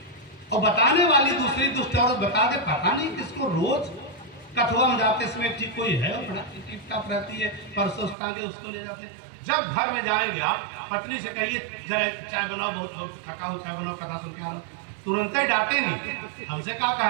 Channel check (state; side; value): drops out; left; at 8.2 s